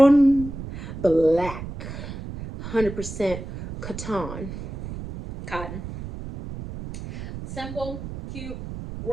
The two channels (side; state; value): right; noise; rumble, 9 dB below the sound